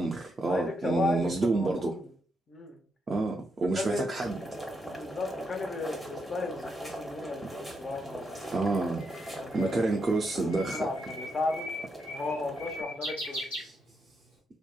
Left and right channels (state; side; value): normal; both; correlation 0.81